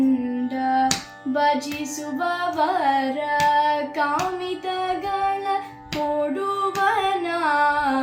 ಭಜಿಸುವವರ ಕಾಮಿತಗಳ ಕೊಡುವ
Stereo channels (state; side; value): identical; both; correlation 1.00